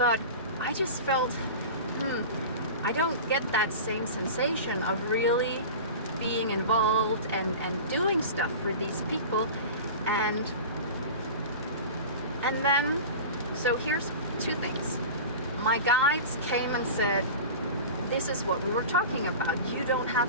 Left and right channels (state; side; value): inverted; both; correlation -0.33